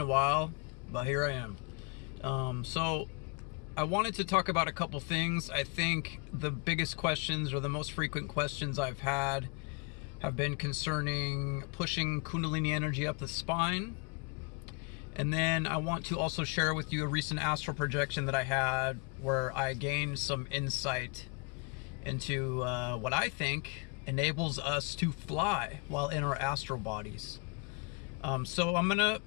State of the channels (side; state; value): right; quieter; 31.3 dB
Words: a while, but here I am. So I wanted to talk about a couple things. I think the biggest questions or the most frequent questions I've had have been concerning pushing kundalini energy up the spine. And then I want to also share with you a recent astral projection that I had where I gained some insight into what I think enables us to fly while in our astral bodies. So I'm